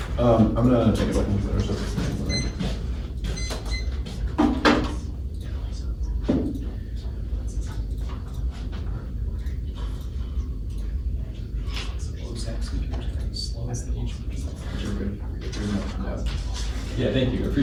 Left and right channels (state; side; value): identical; both; correlation 1.00